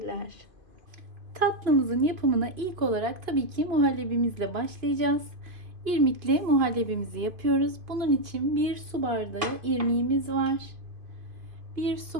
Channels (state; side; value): late; left; 2.5 ms